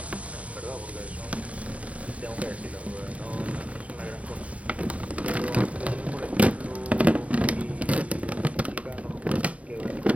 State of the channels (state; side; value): late; left; 0.066 ms